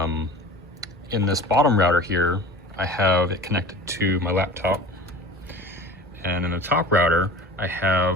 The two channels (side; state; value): both; normal; correlation 0.38